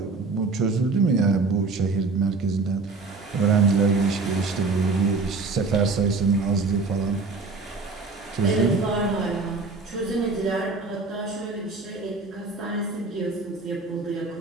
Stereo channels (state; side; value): quieter; left; 3.9 dB